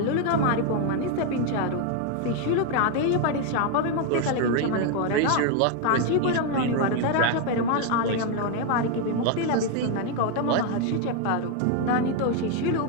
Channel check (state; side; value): different; both; correlation 0.01